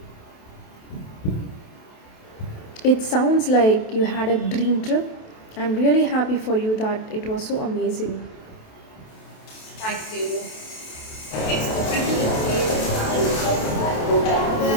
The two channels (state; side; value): late; right; 27 ms